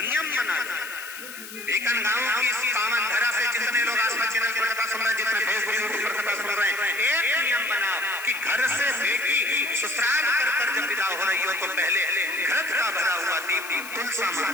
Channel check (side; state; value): left; noise; hiss, 13 dB below the sound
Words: बना दो। एक गाँव की इस पावन धरा से जितने लोग आसपास चैनल पर कथा सुन रहे हैं, जितने फेसबुक यूट्यूब पर कथा सुन रहे हैं, एक नियम बनाओ कि घर से बेटी ससुराल कर जब विदा हो रही हो तो पहले घृत का भरा हुआ दीप तुलसा